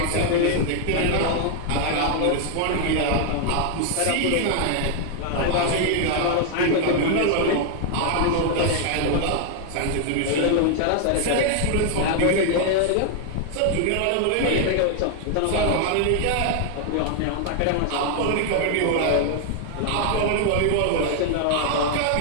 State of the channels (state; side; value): different; both; correlation 0.00